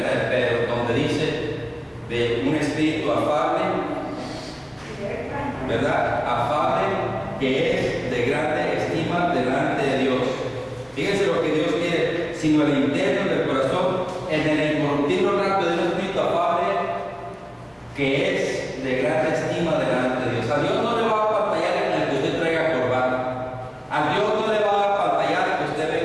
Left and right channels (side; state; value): both; identical; correlation 1.00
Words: Pedro, donde dice de un espíritu afable, ¿verdad? Afable, que es de grande estima delante de Dios. Fíjense lo que Dios quiere, sino el interno del corazón, en el incorruptible rato de un espíritu afable, que es de grande estima delante de Dios. A Dios no le va a pantallar en el que usted traiga corbata. A Dios no le va a pantallar que usted